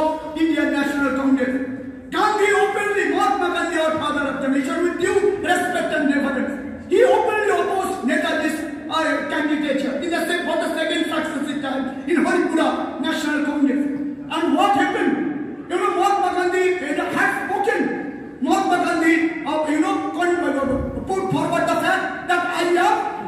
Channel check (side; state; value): both; identical; correlation 1.00